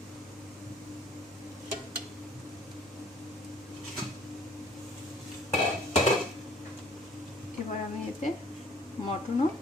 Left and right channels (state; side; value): normal; both; correlation 0.56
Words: এবার আমি এতে মটনও